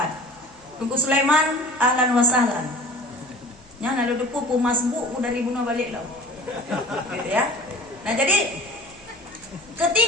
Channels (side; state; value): right; noise; hum, 30 dB below the sound